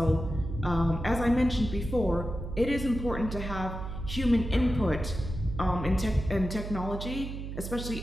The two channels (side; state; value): right; noise; hum, 7 dB below the sound